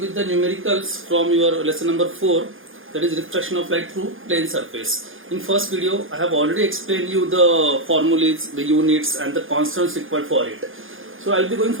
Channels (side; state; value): left; late; 0.59 ms